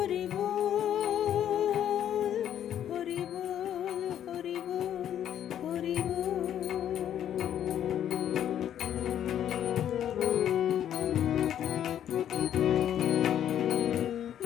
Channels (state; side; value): quieter; right; 10.3 dB